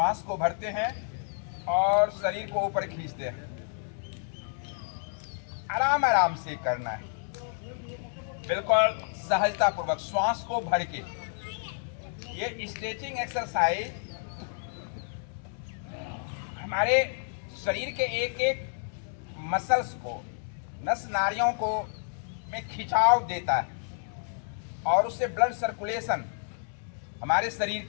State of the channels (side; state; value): right; silent; 58 dB below the other